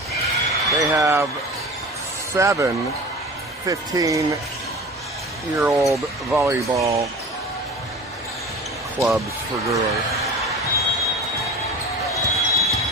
They have 7 15-year-old volleyball clubs for girls.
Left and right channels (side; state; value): both; normal; correlation 0.36